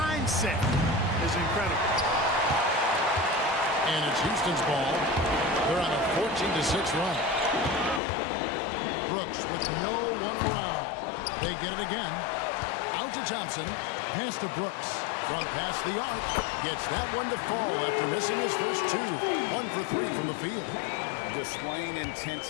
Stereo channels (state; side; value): drops out; right; at 8.0 s